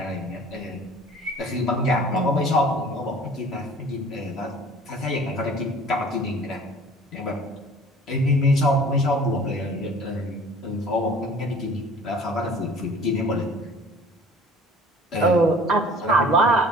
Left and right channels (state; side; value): normal; both; correlation 0.48